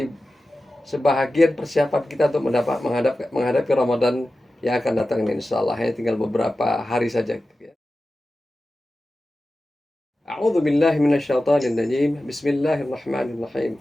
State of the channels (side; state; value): both; normal; correlation 0.94